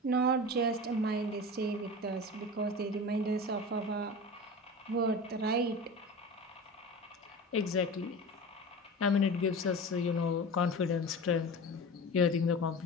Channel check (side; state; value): both; normal; correlation 0.32